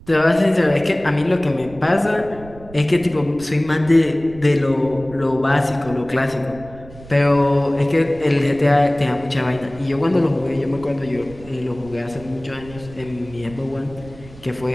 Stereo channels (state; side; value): noise; right; rumble, 19 dB below the sound